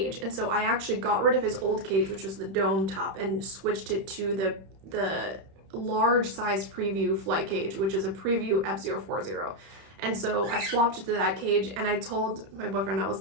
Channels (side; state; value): left; late; 31 ms